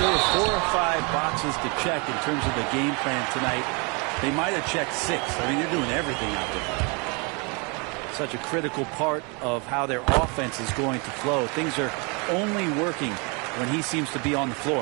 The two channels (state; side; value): quieter; left; 31.7 dB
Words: were 4 or 5 boxes to check in terms of the game plan tonight, they might have checked 6. I mean, they're doing everything out there. Such a critical part of how their offense is going to flow. Things are only working when he seems to be on the